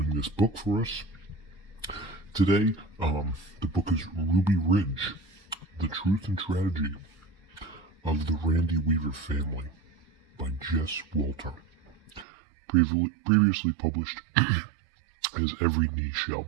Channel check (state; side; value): drops out; left; at 12.2 s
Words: this book for us. Today, the book is Ruby Ridge, The Truth and Tragedy of the Randy Weaver Family by Jess Walter. Previously published as Every Knee Shall